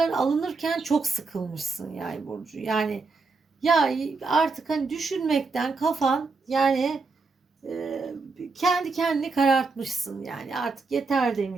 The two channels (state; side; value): quieter; left; 4.1 dB